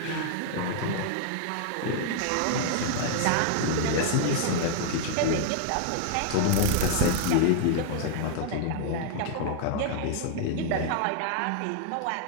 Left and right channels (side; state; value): both; different; correlation -0.01